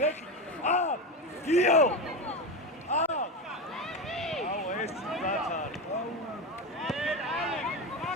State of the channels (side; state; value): both; normal; correlation 0.18